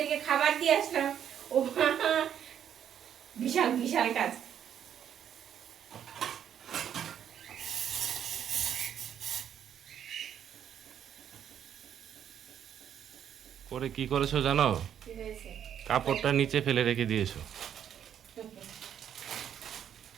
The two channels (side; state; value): left; quieter; 9.3 dB